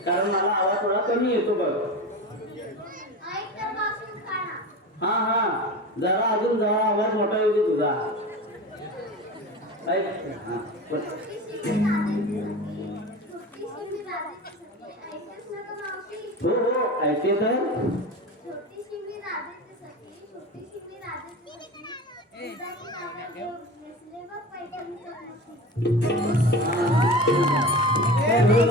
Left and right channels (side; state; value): both; normal; correlation 0.30